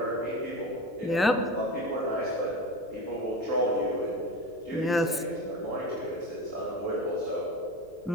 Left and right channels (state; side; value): normal; both; correlation 0.28